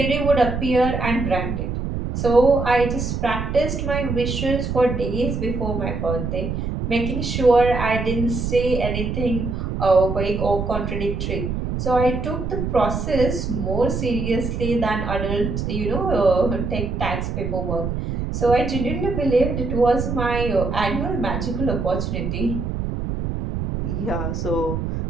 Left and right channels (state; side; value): noise; right; rumble, 3 dB below the sound